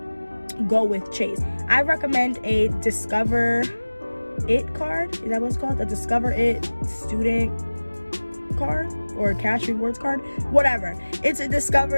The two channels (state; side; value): inverted; both; correlation -1.00